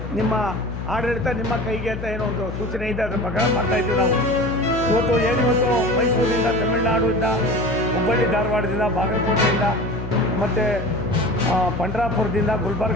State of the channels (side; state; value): left; noise; hum, 9 dB below the sound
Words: ನಿಮ್ಮ ಆಡಳಿತ ನಿಮ್ಮ ಕೈಗೆ ಅಂತ ಏನೋ ಒಂದು ಸೂಚನೆ ಇದೆ, ಅದರ ಪ್ರಕಾರ ಮಾಡ್ತಾಯಿದ್ದೀವಿ ನಾವು. ಇವತ್ತು ಮೈಸೂರಿನಿಂದ, ತಮಿಳುನಾಡಿಂದ, ಹುಬ್ಬಳ್ಳಿ ಧಾರವಾಡದಿಂದ, ಬಾಗಲಕೋಟೆಯಿಂದ ಮತ್ತು ಪಂಡ್ರಾಪುರದಿಂದ